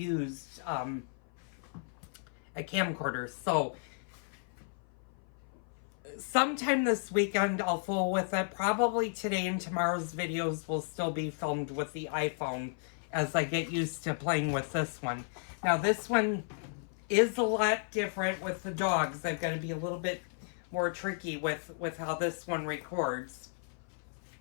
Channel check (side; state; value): right; silent; 55 dB below the other